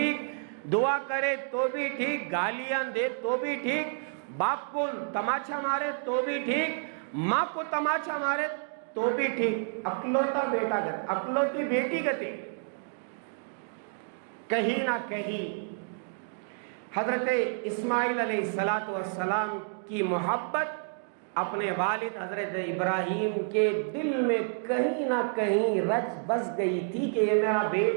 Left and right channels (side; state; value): left; silent; digital silence